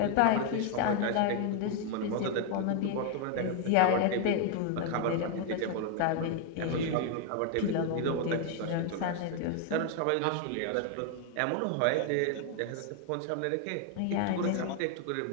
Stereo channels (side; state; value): both; different; correlation 0.01